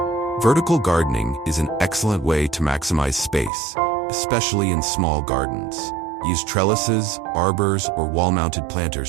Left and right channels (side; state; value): left; drops out; at 3.5 s